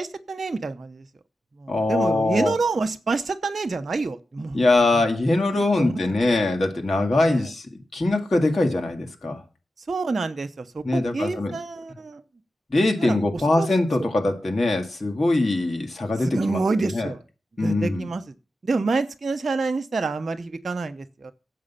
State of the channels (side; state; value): both; normal; correlation 0.90